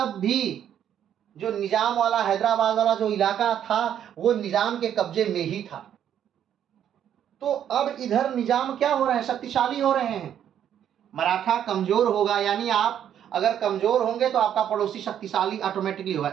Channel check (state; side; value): quieter; left; 9.8 dB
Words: भी जो निजाम वाला, हैदराबाद वाला जो इलाका था वो निजाम के कब्जे में ही था। तो अब इधर निजाम क्या हो रहे हैं? शक्तिशाली हो रहे हैं। मराठा कमजोर होगा, यानी आप अगर कमजोर होंगे तो आपका पड़ोसी शक्तिशाली ऑटोमेटिकली